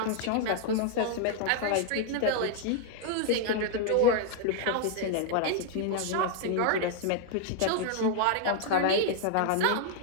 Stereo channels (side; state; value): both; different; correlation 0.00